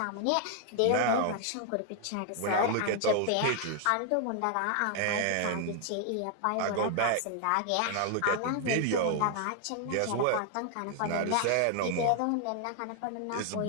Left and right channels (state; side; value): different; both; correlation 0.00